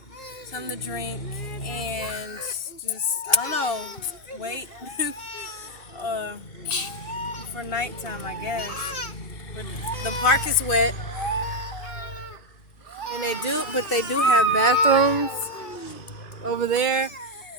something to drink, and just, I don't know, wait for nighttime, I guess. But the park is wet, and they do have bathrooms over there,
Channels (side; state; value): right; late; 2.6 ms